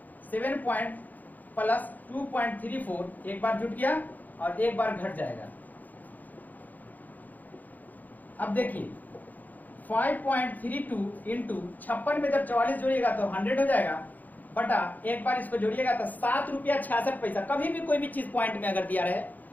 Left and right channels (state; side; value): late; right; 0.082 ms